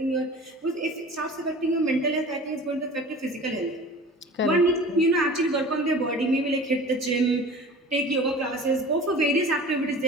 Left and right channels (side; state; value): both; normal; correlation 0.41